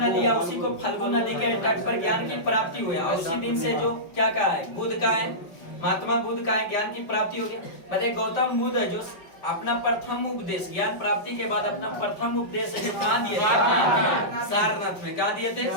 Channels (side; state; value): right; late; 5.3 ms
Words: नदी, या उसी को फल्गु नदी के तट पर ज्ञान की प्राप्ति हुई। और उसी दिन से जो क्या कहा है? बुद्ध का है, महात्मा बुद्ध का है, ज्ञान की प्राप्ति हो गया। बताइए गौतम बुद्ध है जो अपना प्रथम उपदेश ज्ञान प्राप्ति के बाद अपना प्रथम उपदेश है जो कहाँ दिए थे? सारनाथ में। कहाँ दिए थे?